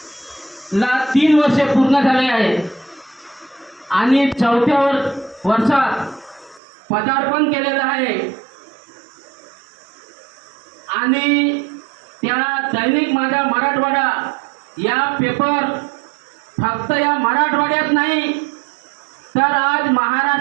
3 वर्षे पूर्ण झाले आहेत आणि 4थ्या वर्षात पदार्पण केलेलं आहे आणि त्या दैनिक माझा मराठवाडा या पेपर फक्त या मराठवाड्यात नाही तर आज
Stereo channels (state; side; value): drops out; left; at 6.6 s